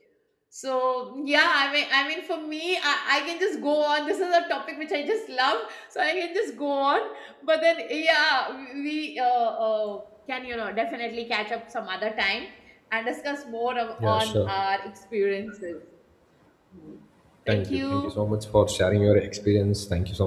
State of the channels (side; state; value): both; identical; correlation 1.00